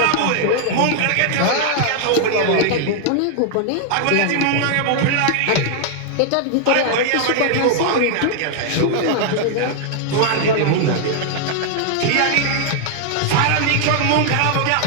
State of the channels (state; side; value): different; both; correlation 0.00